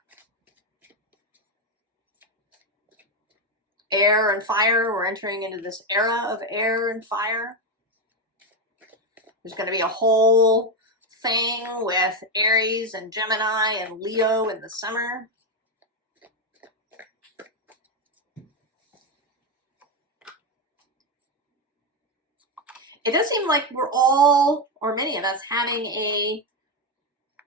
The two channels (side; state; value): both; normal; correlation 0.08